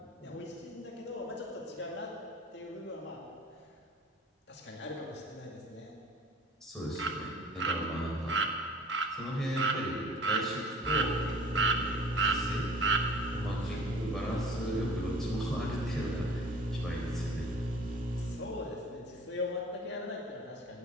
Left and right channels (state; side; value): normal; both; correlation 0.46